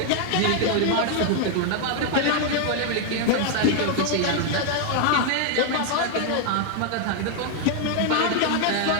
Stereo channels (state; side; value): different; both; correlation 0.00